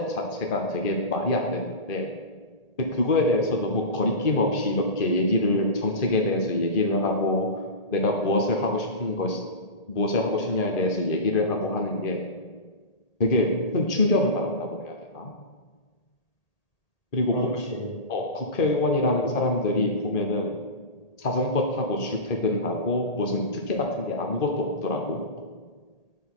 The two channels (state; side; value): late; right; 1.8 ms